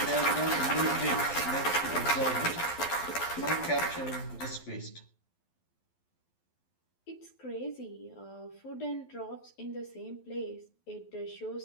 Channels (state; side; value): late; right; 12 ms